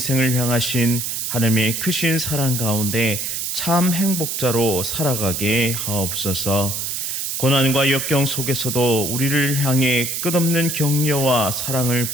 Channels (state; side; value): noise; right; hiss, 2 dB below the sound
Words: 향하신 하나님의 크신 사랑 가운데 참 행복자로 살아가게 하옵소서. 고난과 역경 속에서도 우리를 향해 끝없는 격려와